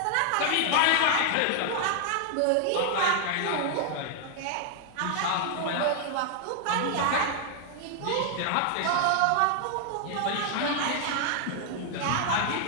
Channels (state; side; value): different; both; correlation 0.00